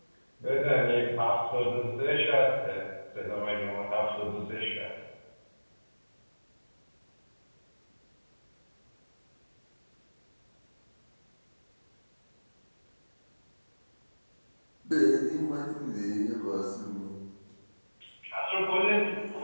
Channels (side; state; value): both; inverted; correlation -1.00